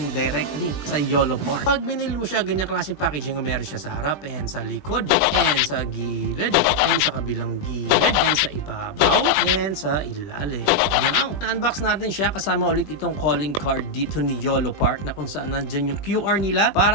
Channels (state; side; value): late; right; 20 ms